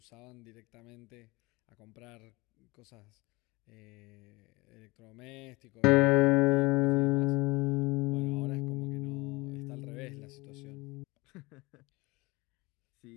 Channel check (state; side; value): quieter; right; 23.6 dB